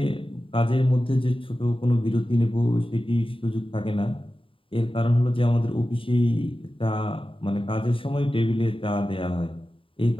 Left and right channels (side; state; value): right; late; 0.25 ms